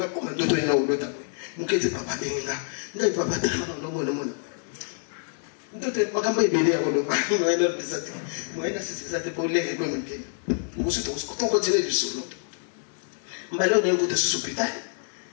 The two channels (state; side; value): silent; right; 60 dB below the other